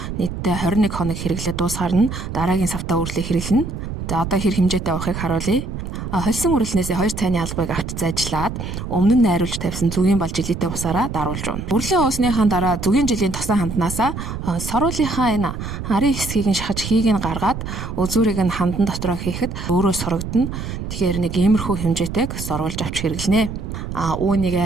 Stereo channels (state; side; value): noise; right; rumble, 6 dB below the sound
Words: нийтдээ 21 хоног хэрэглээд дуусгаар нь дараагийн савтай үрлийг хэрэглэнэ. За одоо хэр хэмжээтэй авахыг харуулъя. Холсон үрлнээсээ 2 цайны албыг авч зайжлаад өмнө нь найруулж тавьсан зүгийн бал жилийтэй усаараа даруулж уна. Үрлээ уусныхаа дараа зүгийн жилийн тосон ханднаасаа соруулынхаа энэ арын хэсгийг нь шахаж хийг нь гаргаад үзүүрийг нь хандан дотроо хийхэд өөрөө сурагдана. Тэгэхээр нэг иймэрхүү хэмжээтэйг соруулж авч хэрэглэнэ.